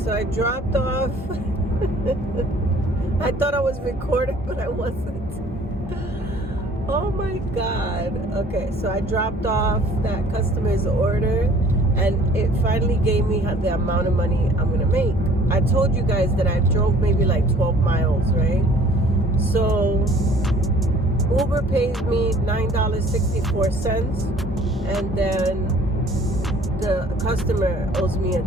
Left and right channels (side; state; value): both; normal; correlation 0.54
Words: I dropped off. I thought I was recording, but I wasn't. Oh my god. Okay, so I dropped off that customer's order, and it finally gave me the amount of money I'm gonna make. I told you guys that I drove maybe like 12 miles, right? So Uber pays me $9.64, and then the customer owes me a